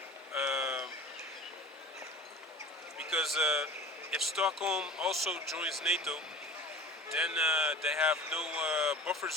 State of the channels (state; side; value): normal; both; correlation 0.39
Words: because if Stockholm also joins NATO, then they have no buffer